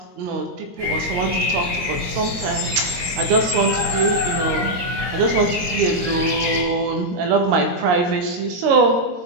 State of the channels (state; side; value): late; left; 22 ms